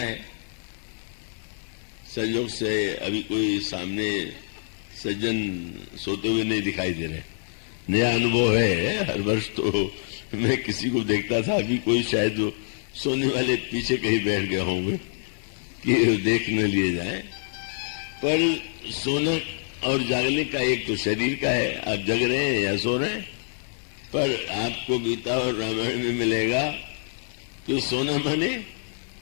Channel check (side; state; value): right; silent; digital silence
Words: संयोग से अभी कोई सामने सज्जन सोते हुए नहीं दिखाई दे रहे, नया अनुभव है। हर वर्ष तो मैं किसी को देखता था, अभी कोई शायद सोने वाले पीछे कहीं बैठ गए होंगे कि देख न लिए जाए। पर सोना और जागने का एक तो शरीर का है, आप जग रहे हैं या सो रहे हैं। पर आपको गीता और रामायण में मिलेगा कि सोना माने